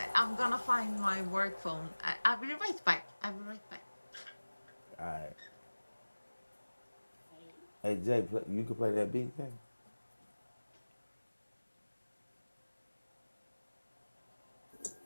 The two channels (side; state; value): both; inverted; correlation -1.00